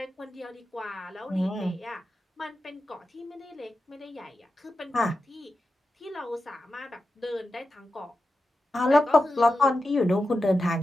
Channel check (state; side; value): normal; both; correlation 0.91